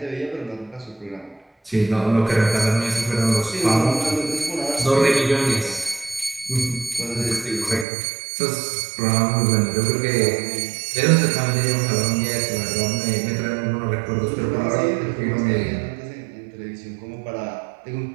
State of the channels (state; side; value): drops out; left; at 7.9 s